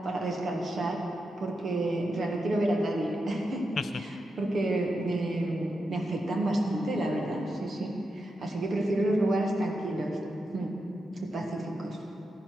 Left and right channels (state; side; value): normal; both; correlation 0.87